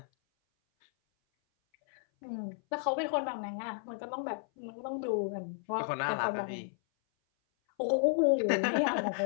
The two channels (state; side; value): silent; right; 56 dB below the other